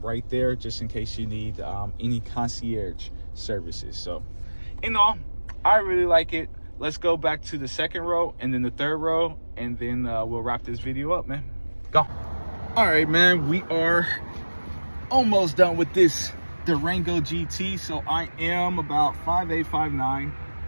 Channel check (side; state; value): both; inverted; correlation -1.00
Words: right there, just in case you need any concierge services. So in all, I really like it. let's go back to the second row and then the third row, and then we'll wrap this video up, man. Go. All right, man, we are almost done with this Durango GT. So I am about 5'8",